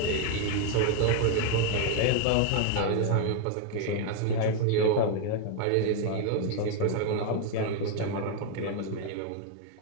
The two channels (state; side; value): different; both; correlation 0.01